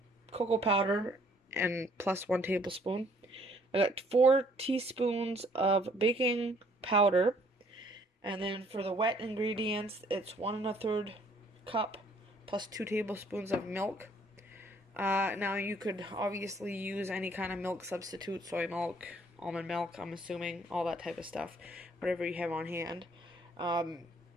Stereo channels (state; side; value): normal; both; correlation 0.62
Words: cocoa powder, and plus 1 tablespoon. I got 4 teaspoons of baking powder, and then for the wet ingredients, it's 1 1/3 cup plus 2 tablespoons of milk. Now you could obviously use any kind of milk substitute, soy milk, almond milk, I'm assuming, all that type of stuff, whatever you have on hand.